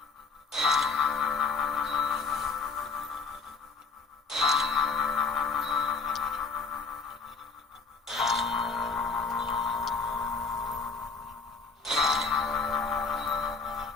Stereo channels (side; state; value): right; quieter; 4.7 dB